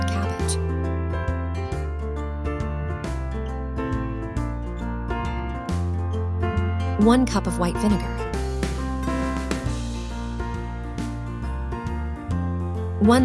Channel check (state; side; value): identical; both; correlation 1.00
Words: cabbage. 1 cup of white vinegar.